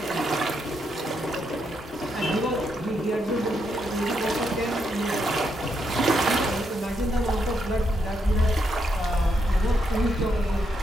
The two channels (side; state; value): both; normal; correlation 0.79